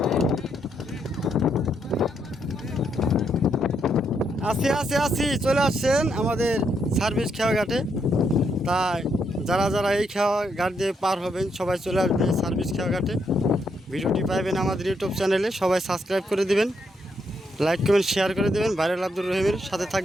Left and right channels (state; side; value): normal; both; correlation 0.77